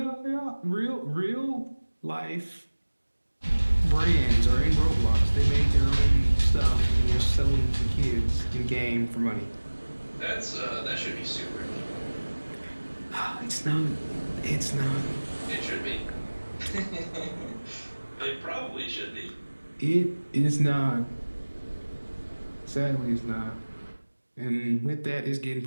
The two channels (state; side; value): inverted; both; correlation -1.00